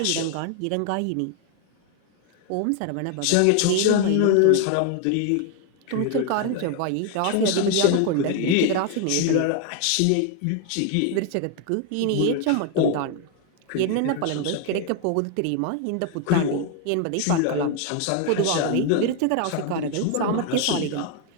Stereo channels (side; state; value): both; different; correlation 0.01